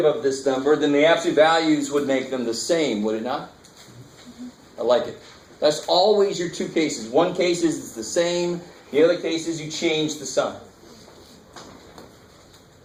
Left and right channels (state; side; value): identical; both; correlation 1.00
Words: of this number, then the absolute values would make them the same, would it not? I like it. That's always your 2 cases. One case is it's the same. The other case is you change the sign.